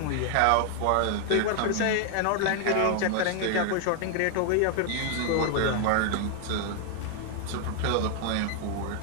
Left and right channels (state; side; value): different; both; correlation 0.00